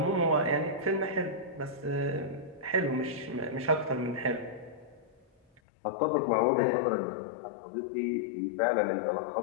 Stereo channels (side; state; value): right; drops out; at 5.6 s